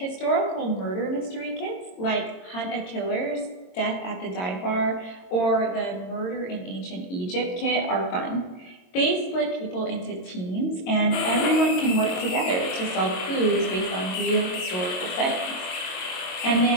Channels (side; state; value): right; late; 22 ms